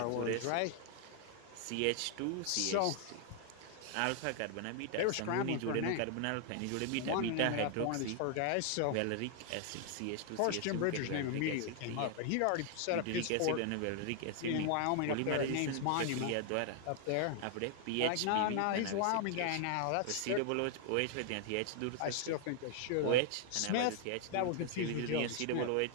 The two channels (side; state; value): both; different; correlation 0.00